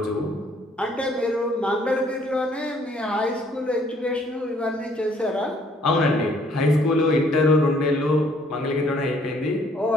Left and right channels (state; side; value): normal; both; correlation 0.63